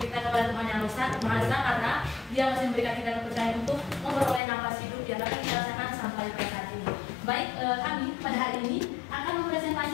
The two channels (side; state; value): right; drops out; at 4.4 s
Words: kita kepada Tuhan Yang Maha Esa karena Dia masih memberikan kita kepercayaan untuk memperoleh nafas hidup yang dapat kita rasakan sampai pada saat ini. Baik, kami pada hari ini akan